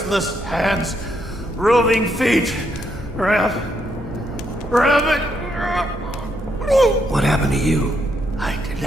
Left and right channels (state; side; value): noise; right; rumble, 14 dB below the sound